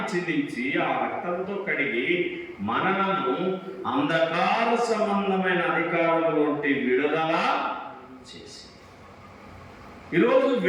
చిందించి ఆ రక్తంతో కడిగి మనలను అంధకార సంబంధమైన అధికారుల నుండి విడుదల చేసి ఈరోజు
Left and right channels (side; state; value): both; identical; correlation 1.00